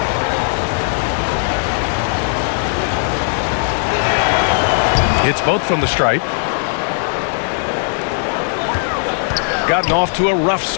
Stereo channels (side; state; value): right; silent; digital silence